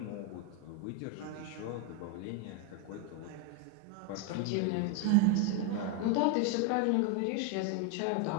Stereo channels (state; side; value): different; both; correlation 0.01